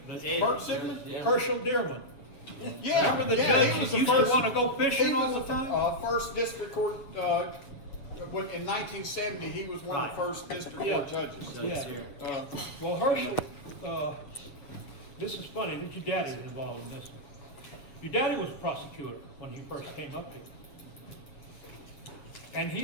But Ed, Bert Sigmund? Herschel Dearman. Yeah. Remember the yeah, judge he was that the used first- to want to go fishing He all was the time? first district court, in 1970, he was one of the Right. first district Yeah. court judges. Yeah. Well, Herschel, this is funny that your daddy was involved in this. Your daddy was a prosecutor when he first came up here. And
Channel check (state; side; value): late; right; 7.8 ms